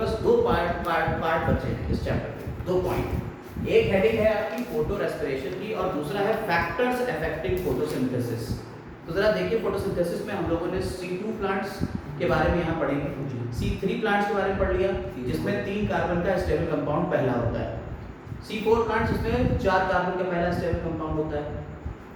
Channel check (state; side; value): identical; both; correlation 1.00